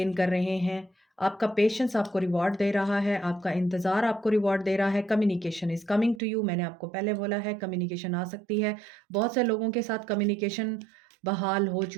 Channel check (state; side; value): drops out; left; at 6.2 s